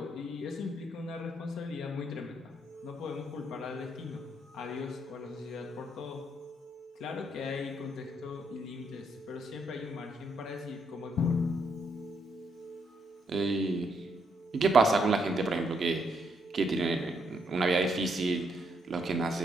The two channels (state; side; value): normal; both; correlation 0.75